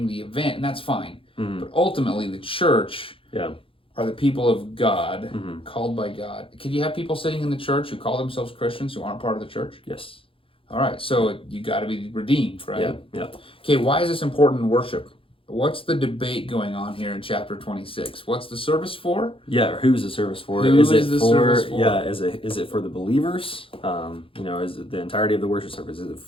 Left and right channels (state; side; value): late; right; 0.26 ms